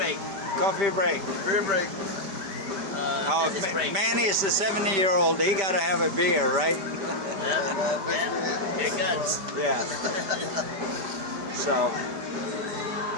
coffee break. Beer break. Oh, Business break. Manny is the 70-year-old. He got to have a beer, right? Yeah. Yeah. Here guns. Yeah. So,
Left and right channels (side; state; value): left; late; 5.1 ms